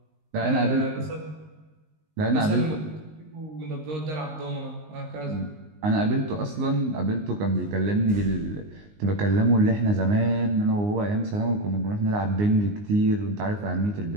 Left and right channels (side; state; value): left; late; 19 ms